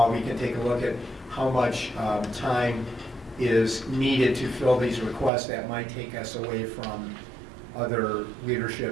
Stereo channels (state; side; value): drops out; left; at 5.3 s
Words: we can take a look at how much time is needed to fill these requests that might take us away from other